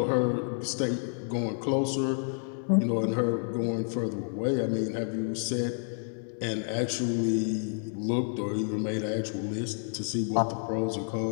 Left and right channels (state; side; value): silent; right; digital silence